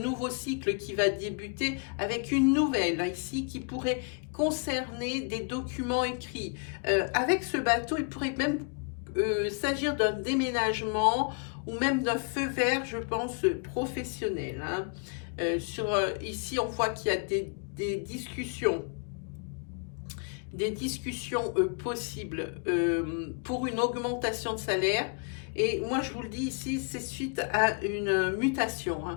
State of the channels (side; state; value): right; quieter; 39.3 dB